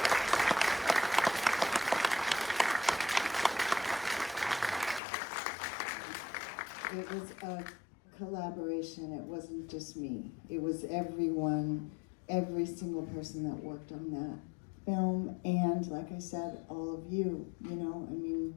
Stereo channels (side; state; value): right; drops out; at 5.0 s